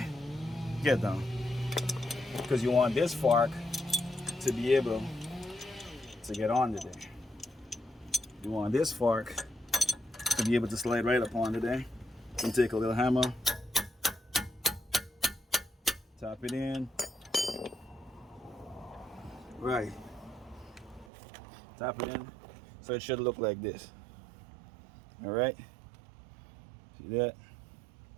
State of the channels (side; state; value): left; drops out; at 21.1 s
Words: Get down. Because you want this fork to be able to get onto there. You want this fork to be able to slide right up onto there. You can take a little hammer, tap it in. Right. Tap it in. So it should look like this. Alright? See that?